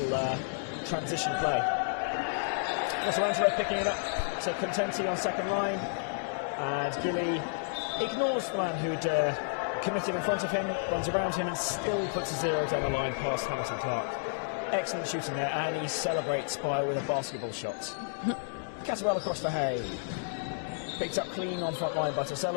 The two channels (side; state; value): right; silent; digital silence